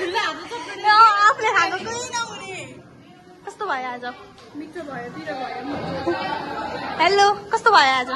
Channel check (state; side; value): identical; both; correlation 1.00